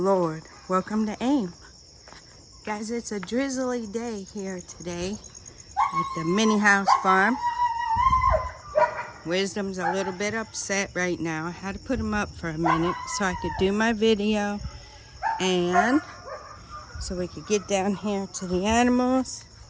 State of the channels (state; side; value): identical; both; correlation 1.00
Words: Welcome to AIM. Guys, it's a drizzly day here today at the mini house farm. Wisdom's a little bit upset right now. I had to put him up for a minute so I could do my video and so we could get down here to the animals